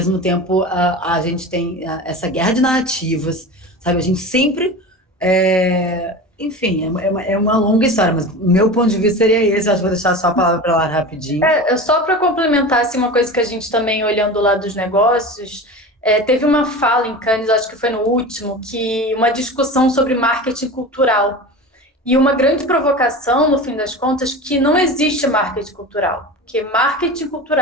tempo, a gente tem essa guerra de narrativas, sabe? A gente sempre enfim, é uma longa história, mas o meu ponto de vista seria esse. Acho que vou deixar só a palavra para lá rapidinho. Só para complementar assim, uma coisa que a gente também, olhando lá dos negócios, teve uma fala em Cannes, acho que foi no último, que uma discussão sobre marketing cultural. E uma grande provocação, no fim das contas, que não existe marketing cultural, porque marketing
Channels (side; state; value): both; normal; correlation 0.31